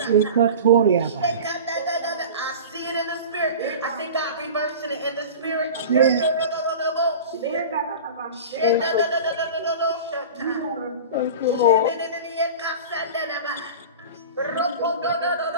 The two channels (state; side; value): inverted; both; correlation -0.34